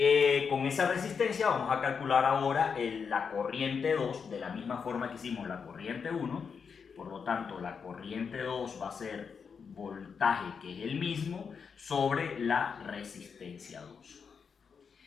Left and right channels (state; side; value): quieter; right; 6.1 dB